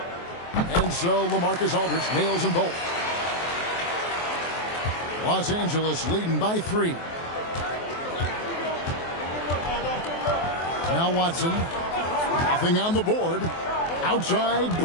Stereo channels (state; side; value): late; right; 23 ms